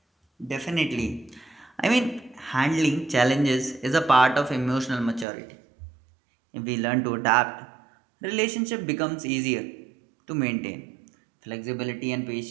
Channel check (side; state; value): left; drops out; at 5.2 s